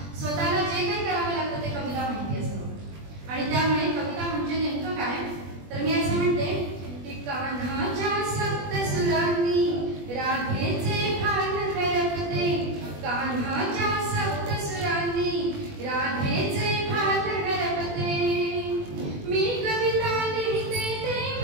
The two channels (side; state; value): left; late; 20 ms